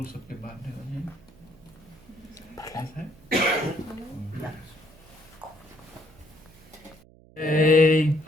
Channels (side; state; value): right; noise; hum, 25 dB below the sound